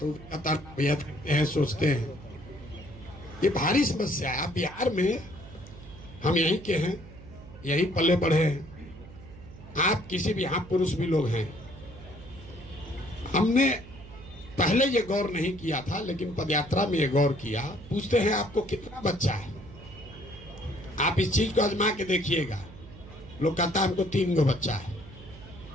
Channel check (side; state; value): right; noise; hum, 17 dB below the sound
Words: कहता भैया देखते हैं, सोचते हैं। ये भारी समस्या है। बिहार में हम यहीं के हैं, यहीं पले बढ़े हैं। आप किसी भी, यहाँ पुरुष भी लोग हैं। हमने पहले ये गौर नहीं किया था, लेकिन पदयात्रा में ये गौर किया। पूछते हैं आपको कितना बच्चा है, आप इस चीज को आजमा के देखिएगा। लोग कहता है हमको 3 गो बच्चा है,